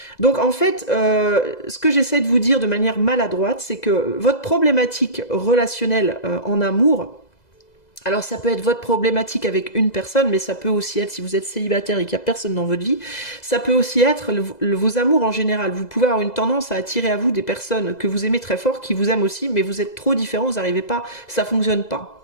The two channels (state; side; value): late; right; 2.0 ms